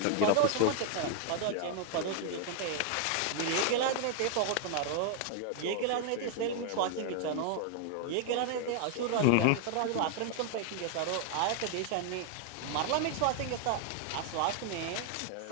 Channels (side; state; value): both; different; correlation 0.00